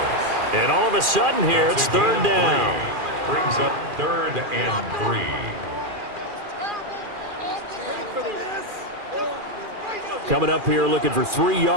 And all of a sudden here, it's third down. Brings up 3rd and 3. Coming up here looking for 3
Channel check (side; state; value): left; late; 2.4 ms